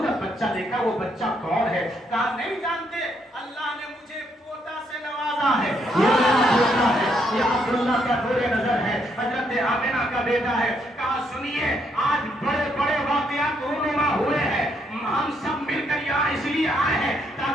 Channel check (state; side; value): normal; both; correlation 0.74